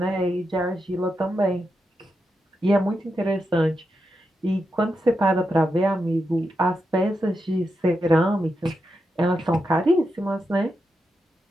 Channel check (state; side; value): normal; both; correlation 0.86